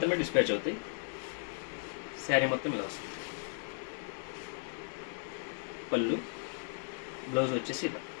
డిస్పాచ్ అవుతాయి. శారీ మొత్తం ఇలా వస్తుంది. పళ్ళు. బ్లౌజ్ వచ్చేసి ఇలా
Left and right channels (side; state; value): right; silent; digital silence